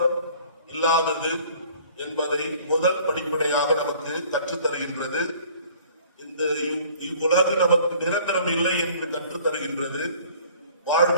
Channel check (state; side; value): inverted; both; correlation -0.52